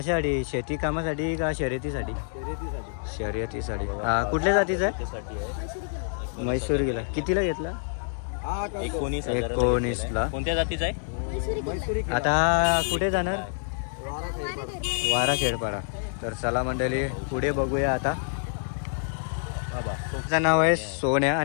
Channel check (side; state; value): right; silent; digital silence